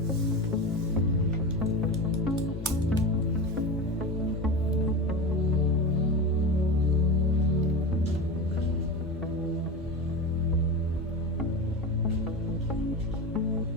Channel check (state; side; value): normal; both; correlation 0.24